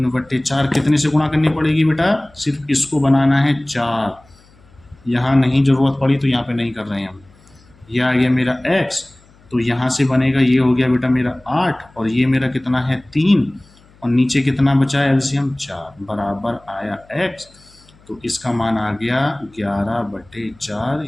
कितने से गुणा करनी पड़ेगी बेटा? सिर्फ इसको बनाना है 4। यहाँ नहीं ज़रूरत पड़ी तो यहाँ पे नहीं कर रहे हैं हम। यह आ गया मेरा x। तो यहाँ से बनेगा, ये हो गया बेटा मेरा 8 और ये मेरा कितना है 3 और नीचे कितना बचा है? एलसीएम 4 बराबर आया x। तो इसका मान आ गया 11/4।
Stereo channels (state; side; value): noise; left; hum, 29 dB below the sound